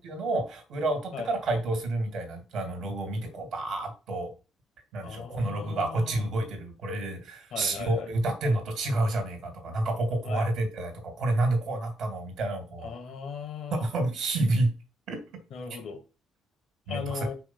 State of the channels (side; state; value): both; normal; correlation 0.78